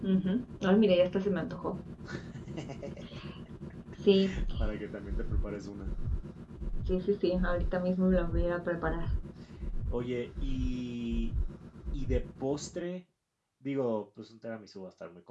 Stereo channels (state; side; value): identical; both; correlation 1.00